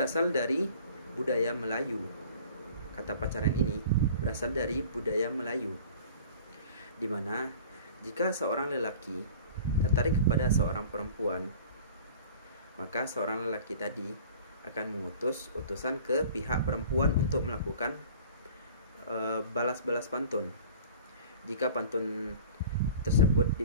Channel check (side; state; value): both; inverted; correlation -0.45